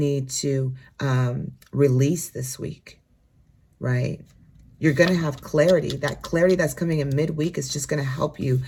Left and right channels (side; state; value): both; identical; correlation 1.00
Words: to release this week, right? You're going to have clarity. That clarity that's coming in midweek is just going to help you,